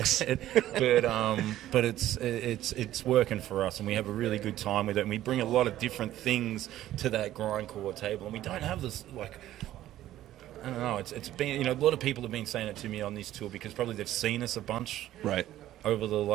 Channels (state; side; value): quieter; left; 13.6 dB